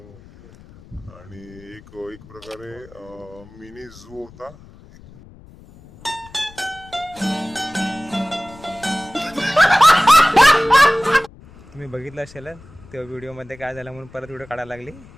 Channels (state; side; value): noise; left; rumble, 22 dB below the sound